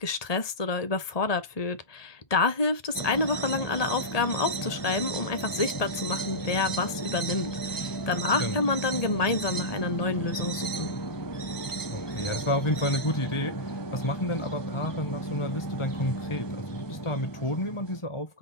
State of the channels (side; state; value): right; late; 1.2 ms